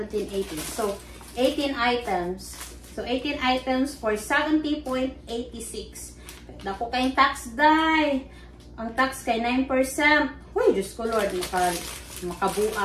18. So, 18 items. So, 18 items for 70.86. Dako kayong tax die. Ang tax kay 9%. Uy, Diyos ko Lord,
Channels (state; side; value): identical; both; correlation 1.00